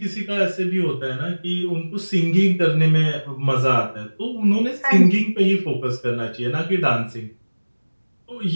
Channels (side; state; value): both; inverted; correlation -1.00